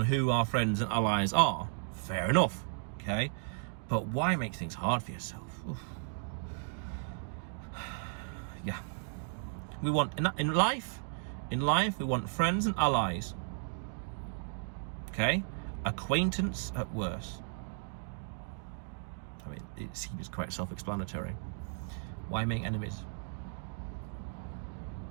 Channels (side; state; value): left; silent; digital silence